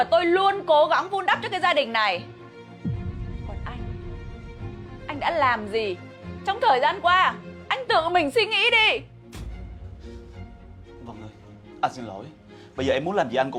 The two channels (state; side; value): identical; both; correlation 1.00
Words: tôi luôn cố gắng vun đắp cho cái gia đình này. Còn anh đã làm gì trong thời gian qua? Anh tự mình suy nghĩ đi. Vân ơi, anh xin lỗi. Bây giờ em muốn làm gì anh